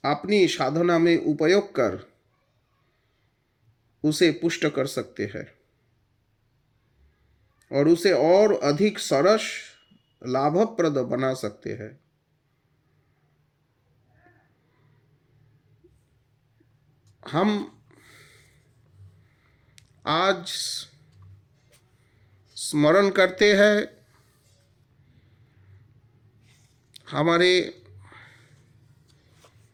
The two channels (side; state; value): both; identical; correlation 1.00